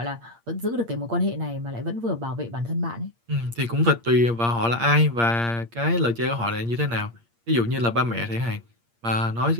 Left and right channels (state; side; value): late; left; 8.6 ms